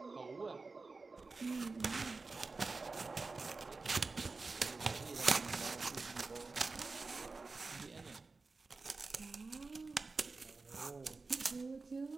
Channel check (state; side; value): quieter; left; 3.9 dB